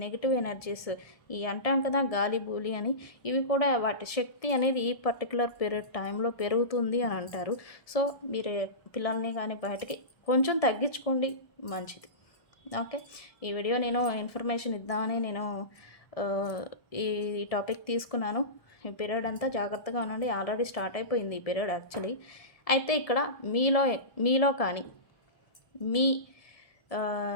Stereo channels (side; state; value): right; late; 1.7 ms